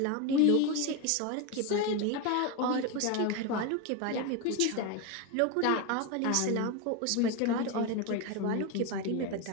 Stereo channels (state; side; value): different; both; correlation 0.03